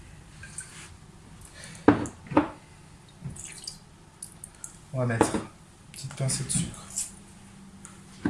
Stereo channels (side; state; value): both; identical; correlation 1.00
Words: On va mettre une petite pincée de sucre,